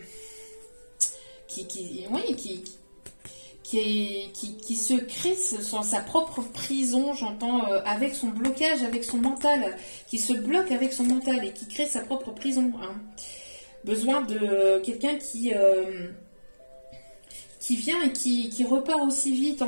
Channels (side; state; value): both; inverted; correlation -1.00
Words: qui se crée sa propre prison, j'entends, avec son blocage, avec son mental, qui se bloque avec son mental et qui crée sa propre prison. Hein. Besoin de quelqu'un qui vient et qui repart aussi vite,